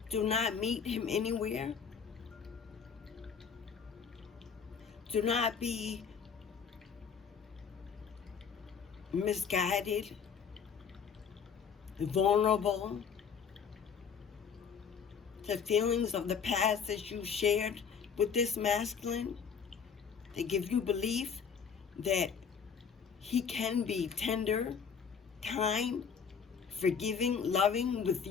Do not meet him anywhere. Do not be misguided, vulnerable to feelings of the past that you shared with this masculine. They give you belief that he can be tender, kind, forgiving, loving with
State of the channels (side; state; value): right; quieter; 6.6 dB